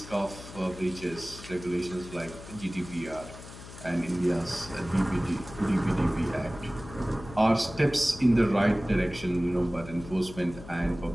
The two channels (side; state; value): left; noise; hum, 15 dB below the sound